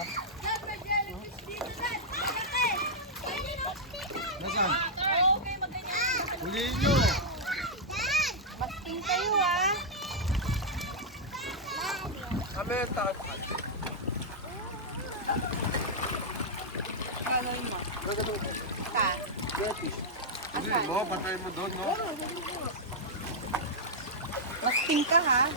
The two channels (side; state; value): both; normal; correlation -0.07